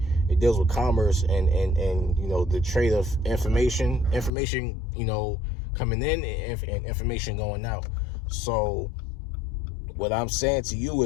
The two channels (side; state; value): right; drops out; at 4.3 s